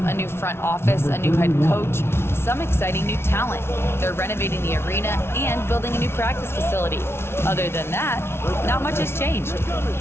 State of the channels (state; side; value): late; right; 0.12 ms